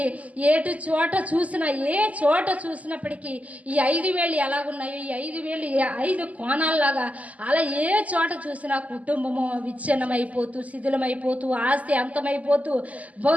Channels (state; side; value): late; left; 0.072 ms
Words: ఏ చోట చూసినప్పటికీ ఈ 5,000 ఎలాగున్నాయో, ఈ 5,000 5 కోణాల్లాగా అలా ఏ చోట చూసినా కుటుంబము విచ్ఛిన్నమైపోతూ, శిథిలమైపోతూ, ఆస్తి అంతమైపోతూ,